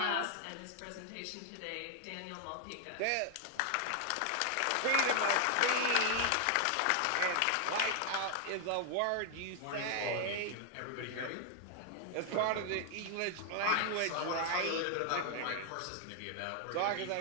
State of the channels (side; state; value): both; different; correlation 0.00